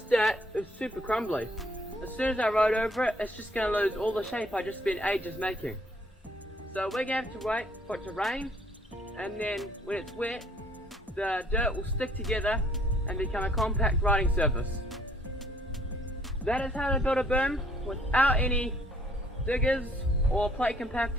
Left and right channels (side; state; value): both; normal; correlation 0.62